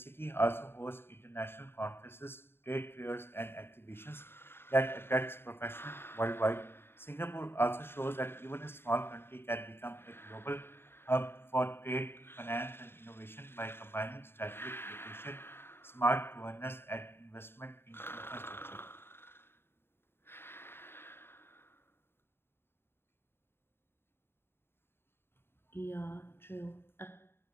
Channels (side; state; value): right; late; 0.11 ms